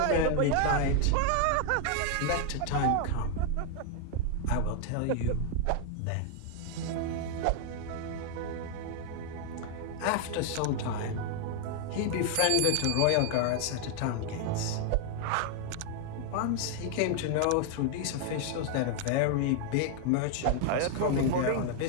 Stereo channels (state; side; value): different; both; correlation 0.00